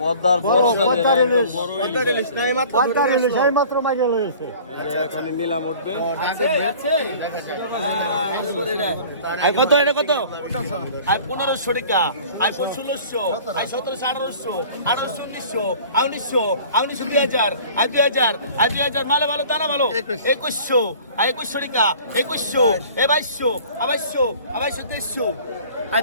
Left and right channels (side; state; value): both; inverted; correlation -0.47